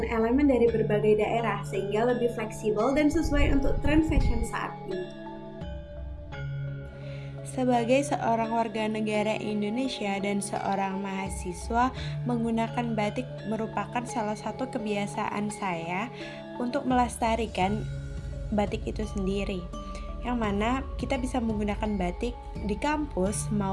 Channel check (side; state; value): both; identical; correlation 1.00